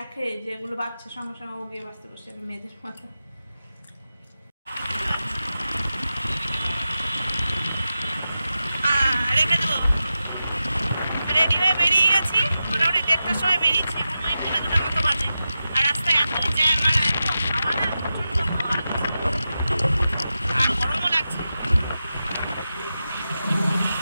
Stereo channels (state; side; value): inverted; both; correlation -0.91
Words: যে এগুলো বাচ্চা, সঙ্গে সঙ্গে ও গিয়ে বাঁচতে বসে যাবে, মেয়েদের মাথা। রেখে দেবো, রেডি হয়ে বেরিয়ে গেছি, মোটামুটি 1:30টার সময় বেরিয়েছি, এখন ওই 2:00 মতো বাজে। আর রাস্তায় এত জ্যাম, আর এত হাওয়া না, প্রচণ্ড হাওয়া, আর গরমও লাগছে।